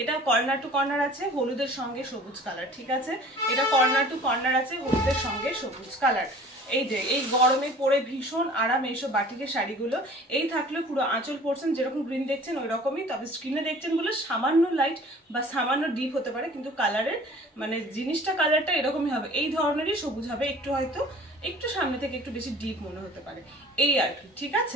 এটা কর্নার টু কর্নার আছে, হলুদের সঙ্গে সবুজ কালার, ঠিক আছে? এটা কর্নার টু কর্নার আছে, হলুদের সঙ্গে সবুজ কালার। এই যে এই গরমে পরে ভীষণ আরাম এইসব বাটিকের শাড়িগুলো। এই থাকলে পুরো আঁচল পোর্শন যেরকম গ্রিন দেখছেন ওই রকমই, তবে স্ক্রিনে দেখছেন বলে সামান্য লাইট বা সামান্য ডিপ হতে পারে, কিন্তু কালারের মানে জিনিসটা কালারটা এরকমই হবে। এই ধরনেরই সবুজ হবে, একটু হয়তো একটু সামনে থেকে একটু বেশি ডিপ মনে হতে পারে, এই আর কি, ঠিক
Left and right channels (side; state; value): both; normal; correlation 0.47